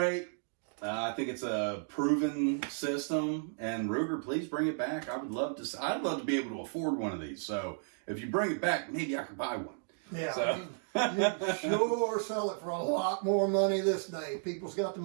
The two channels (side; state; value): left; silent; digital silence